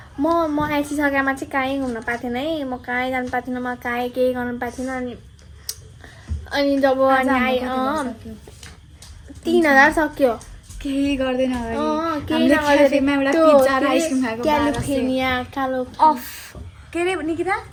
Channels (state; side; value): identical; both; correlation 1.00